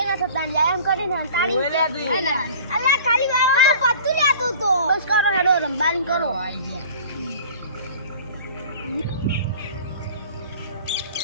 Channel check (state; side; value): inverted; both; correlation -0.44